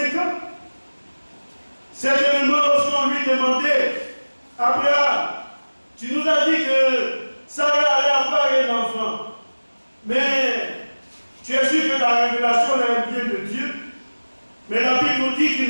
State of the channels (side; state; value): both; inverted; correlation -1.00